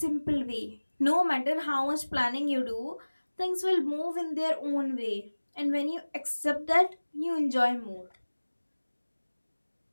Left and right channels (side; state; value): both; inverted; correlation -1.00